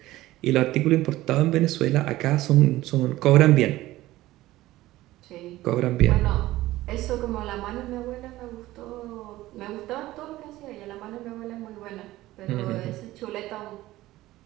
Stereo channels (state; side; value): quieter; left; 16.6 dB